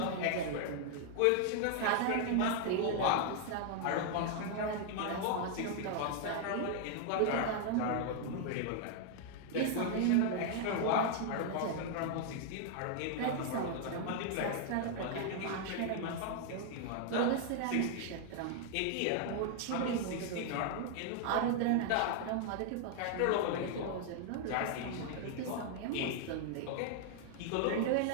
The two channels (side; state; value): both; different; correlation 0.00